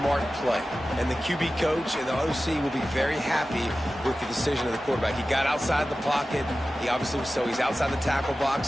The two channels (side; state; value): both; normal; correlation 0.95